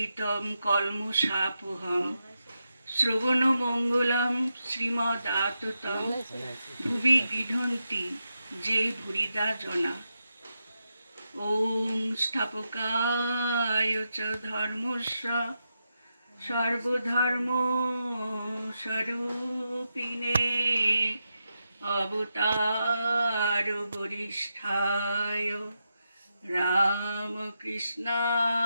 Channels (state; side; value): inverted; both; correlation -0.87